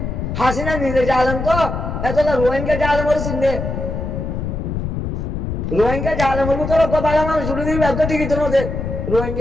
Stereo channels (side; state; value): left; noise; rumble, 4 dB below the sound